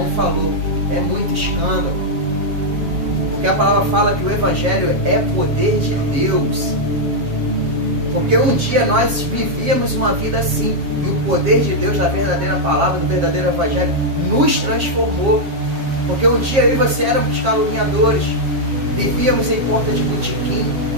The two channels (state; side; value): late; left; 7.4 ms